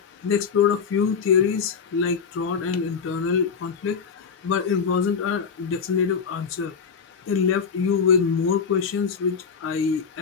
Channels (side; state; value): right; quieter; 6.1 dB